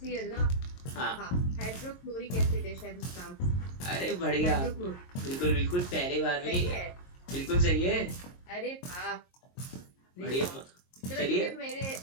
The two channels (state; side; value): late; right; 22 ms